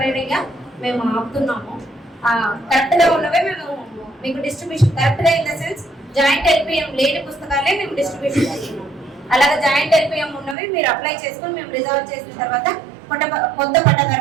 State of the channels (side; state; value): left; drops out; at 10.6 s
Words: మేము ఆపుతున్నాము. కరెక్ట్ గా ఉన్నవే మేము మీకు డిస్ట్రిబ్యూషన్, కరెక్ట్ గా ఇన్ ద సెన్స్ జాయింట్ ఎల్పీఎం లేని పుస్తకాలే మేము డిస్ట్రిబ్యూషన్ చేస్తున్నాం. అలాగే జాయింట్ ఎల్పీఎం ఉన్నవి మీరు అప్లై చేసుకుని మేము రిజాల్వ్ చేసిన తర్వాత కొత్త